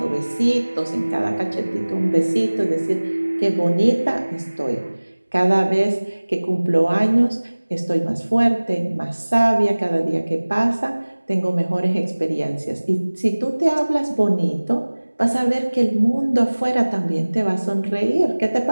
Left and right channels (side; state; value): both; inverted; correlation -1.00